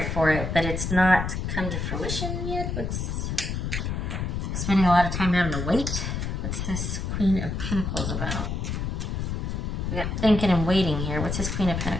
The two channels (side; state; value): left; noise; rumble, 2 dB below the sound